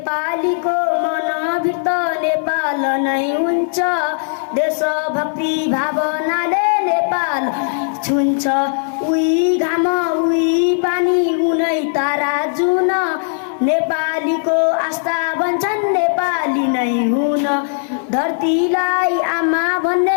मनभित्र नेपाल नै हुन्छ देशभक्ति भावनाले नेपाल छुन्छ उही घाम उही पानी उनै तारा जुन नेपालीको आस्था भन्छन् नेपाली नै हुन धरतीलाई आमा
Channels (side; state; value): right; silent; digital silence